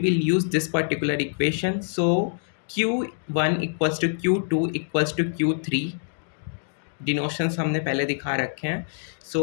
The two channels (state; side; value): silent; right; digital silence